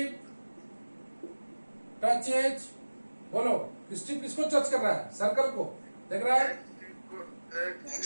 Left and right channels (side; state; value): both; inverted; correlation -1.00